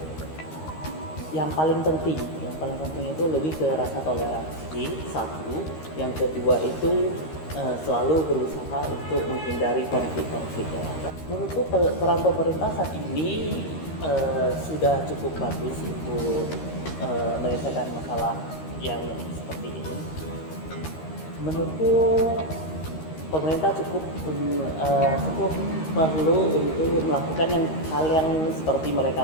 yang paling penting itu lebih ke rasa toleransi, satu. Yang kedua itu selalu berusaha untuk menghindari konflik-konflik. Menurutku peran pemerintah saat ini sudah cukup bagus untuk menyelesaikan masalah yang seperti ini. Menurutku pemerintah cukup perlu untuk melakukan hal yang seperti mereka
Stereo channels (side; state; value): right; late; 13 ms